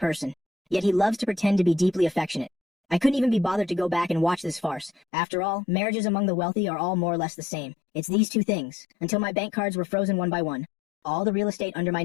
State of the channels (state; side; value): drops out; right; at 5.0 s